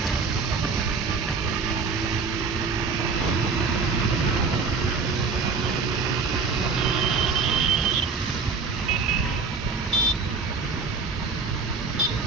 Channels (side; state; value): left; quieter; 4.7 dB